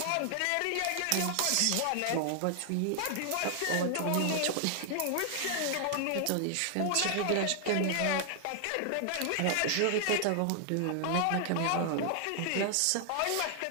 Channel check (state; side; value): different; both; correlation 0.00